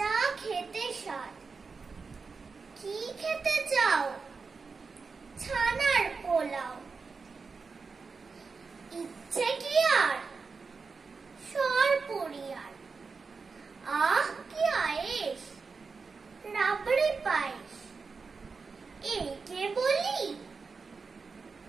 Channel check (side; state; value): left; quieter; 4.7 dB